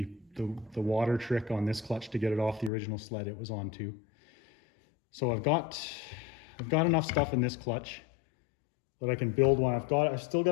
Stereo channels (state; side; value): drops out; right; at 2.7 s